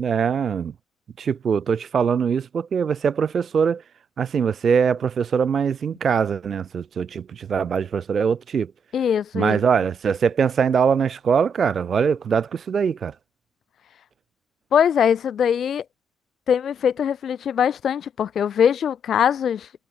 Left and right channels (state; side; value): normal; both; correlation 0.75